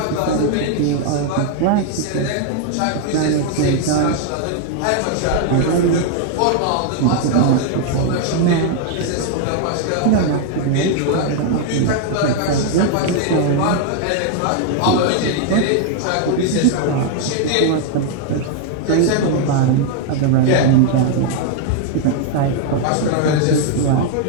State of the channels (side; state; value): both; different; correlation 0.00